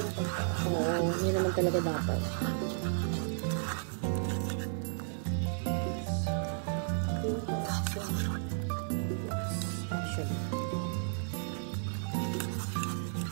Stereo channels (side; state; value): left; silent; 55 dB below the other